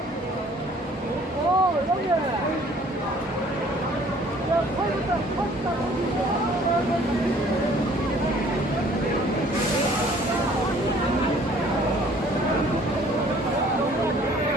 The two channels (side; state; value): both; normal; correlation 0.55